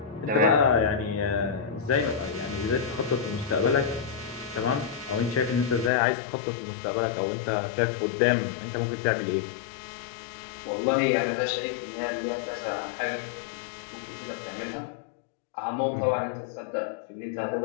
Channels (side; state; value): right; drops out; at 5.9 s